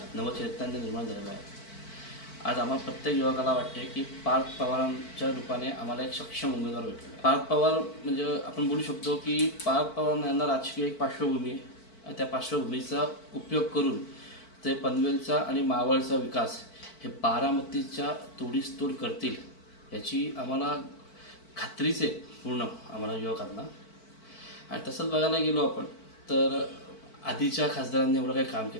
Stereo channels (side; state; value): right; late; 4.5 ms